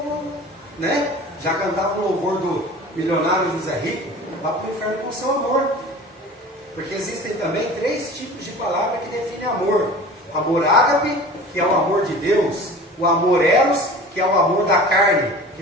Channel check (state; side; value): normal; both; correlation 0.40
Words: né? Já cantava o louvor do milionário José Rico, vá para o inferno com seu amor, porque existem também 3 tipos de palavra que definem amor: amor ágape, que é o amor de Deus, o amor eros, que é o amor da carne, que